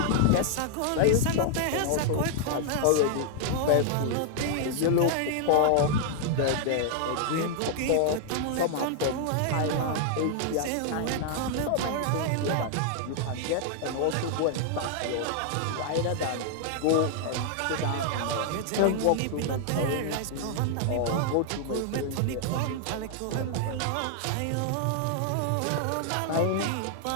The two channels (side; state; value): both; different; correlation -0.01